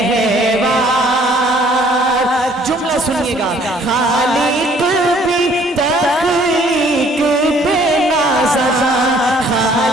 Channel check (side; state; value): both; normal; correlation 0.59